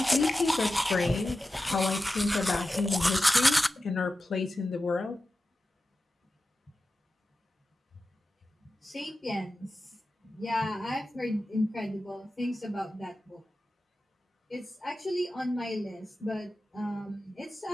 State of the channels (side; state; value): both; normal; correlation 0.93